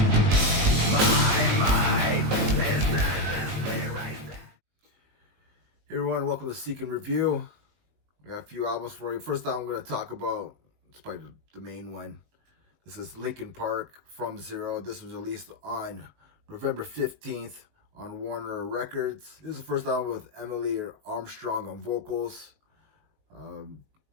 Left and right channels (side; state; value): left; late; 20 ms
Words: My mind is endlessly racing. Hey everyone, welcome to Seek and Review. I got a few albums for you. First album I'm going to talk about, it's probably the main one. This is Linkin Park, From Zero. This was released on November 15th on Warner Records. This is the first album with Emily Armstrong on vocals.